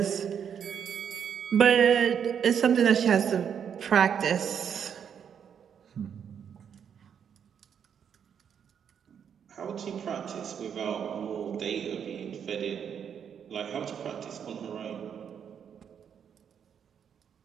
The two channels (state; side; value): quieter; left; 7.9 dB